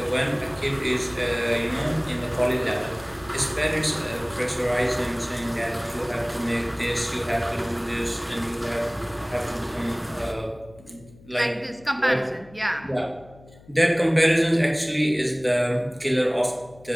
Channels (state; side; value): noise; left; hum, 23 dB below the sound